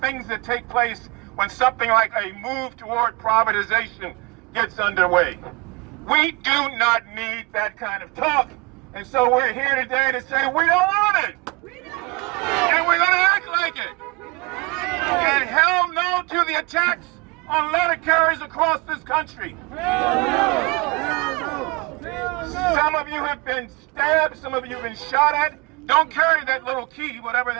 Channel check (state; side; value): quieter; left; 26.8 dB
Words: that take place when something like a move toward privatization gets underway. We do not need that kind of talk. And so we're here today to say we don't want it. And we're going to act like it. And hell no to the attacks on letter carriers across this country. Some of you have been stabbed, some of you have been shot at. Don't carry that little key, whatever